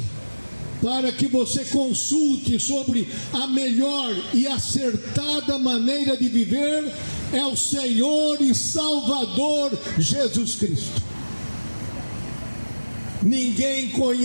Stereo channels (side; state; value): both; inverted; correlation -1.00